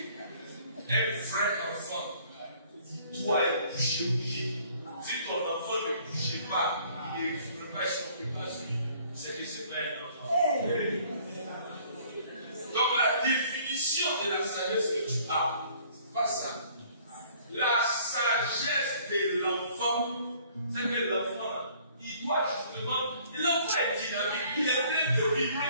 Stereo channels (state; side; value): inverted; both; correlation -0.57